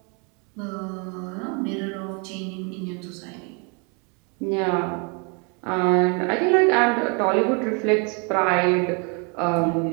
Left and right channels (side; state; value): left; quieter; 34.5 dB